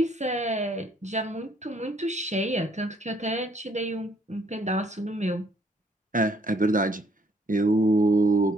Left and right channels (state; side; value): normal; both; correlation 0.65